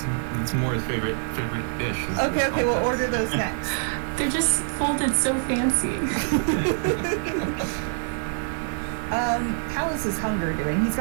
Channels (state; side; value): silent; left; digital silence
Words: Moore's favorite dish. is Okay, the okay, we'll cold cuts. order those next. They're just folded so fancy. How is his hunger doing? He's